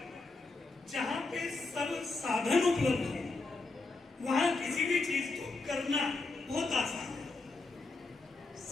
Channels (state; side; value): quieter; right; 3.5 dB